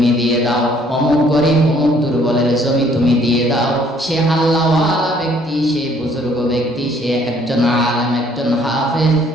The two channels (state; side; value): normal; both; correlation 0.62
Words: দিয়ে দাও, অমুক গরিব অমুক দুর্বলের জমি তুমি দিয়ে দাও। সে আল্লাহওয়ালা ব্যক্তি, সে বুজুর্গ ব্যক্তি, সে একজন আলেম, একজন হাফেজ,